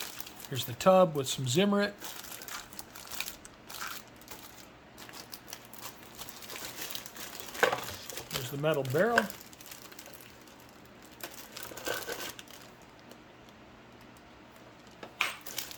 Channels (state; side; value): identical; both; correlation 1.00